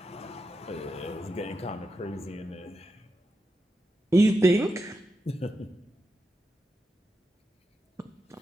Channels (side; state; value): both; normal; correlation 0.88